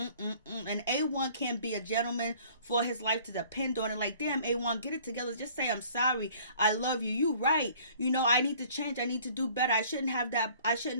A1 can't be a gentleman for his life to depend on it. Like, damn, A1, get it together. Just say, I'm sorry. I love you. You right. I need to change. I need to do better. I shouldn't have that. I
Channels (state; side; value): inverted; both; correlation -0.53